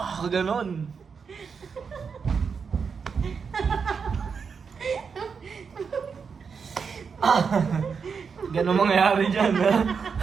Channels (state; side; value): quieter; left; 5.9 dB